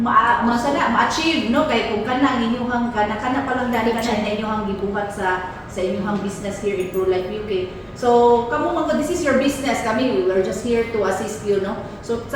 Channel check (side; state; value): both; identical; correlation 1.00